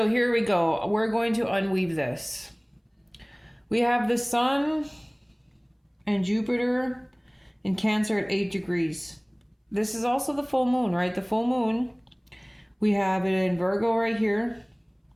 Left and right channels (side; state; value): both; identical; correlation 1.00